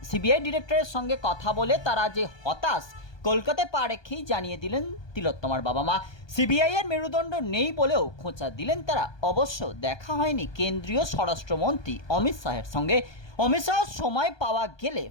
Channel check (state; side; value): late; right; 1.2 ms